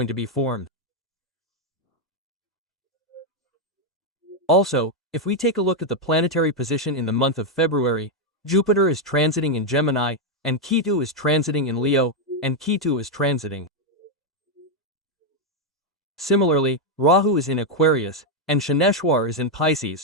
to be formed. Also, if we take a look at the planetary position in the month of February, Jupiter is transiting in Gemini, and Ketu is transiting in Leo, and Ketu is transiting. Similarly, Rahu is in Aquarius, and Shaneshwar is in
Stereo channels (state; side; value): normal; both; correlation 0.02